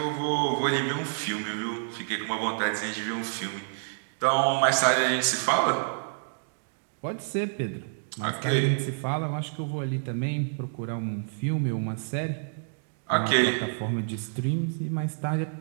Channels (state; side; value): silent; left; digital silence